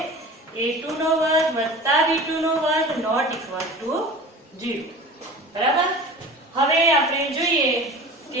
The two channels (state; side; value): normal; both; correlation 0.37